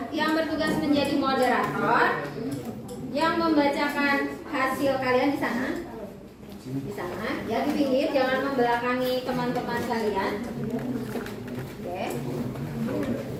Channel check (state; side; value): identical; both; correlation 1.00